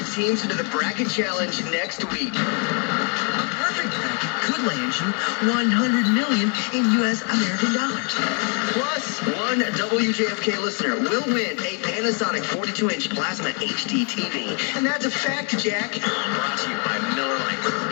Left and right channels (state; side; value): quieter; right; 38.3 dB